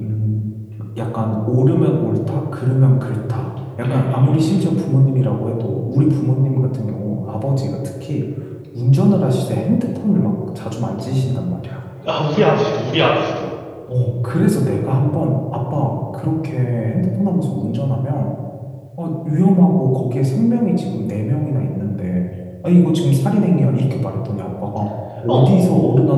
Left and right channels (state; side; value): identical; both; correlation 1.00